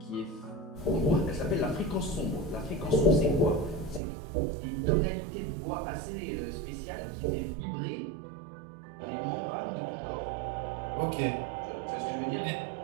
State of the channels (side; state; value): left; drops out; at 4.0 s